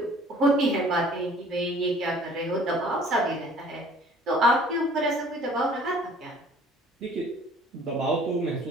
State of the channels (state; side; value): normal; both; correlation 0.52